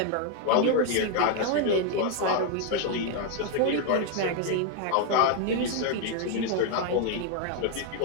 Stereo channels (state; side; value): different; both; correlation 0.00